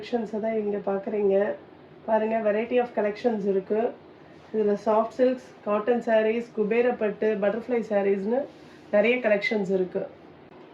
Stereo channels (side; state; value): both; identical; correlation 1.00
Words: தான் இங்க பார்க்குறீங்க. பாருங்க variety of collections இருக்கு. இதுல soft silks, cotton sarees, Kubera பட்டு, butterfly sareesனு நிறைய collections இருக்கு.